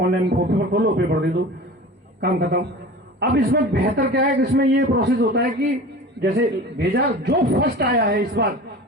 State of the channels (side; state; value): both; normal; correlation 0.37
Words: पेपर खोलो, पेपर दे दो, काम खत्म। अब इसमें बेहतर क्या है कि इसमें ये प्रोसेस होता है कि जैसे भेजा, जो फर्स्ट आया है इस बार